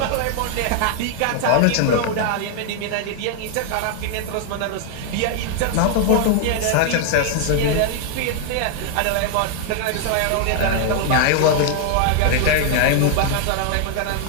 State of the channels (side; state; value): both; different; correlation 0.00